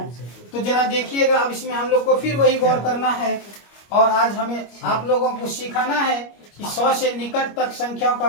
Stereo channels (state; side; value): late; right; 25 ms